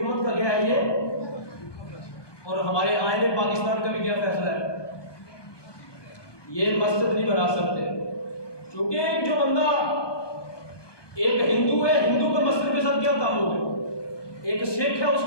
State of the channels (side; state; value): right; late; 1.2 ms